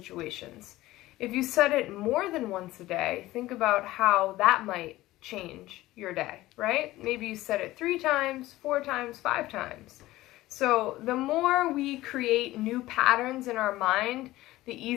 If you said it more than once a day, think about how that might change your day, right? Maybe you said it 3 times, 4 times, 5 times. So the more we create new patterns in our mind, the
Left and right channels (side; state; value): right; quieter; 17.1 dB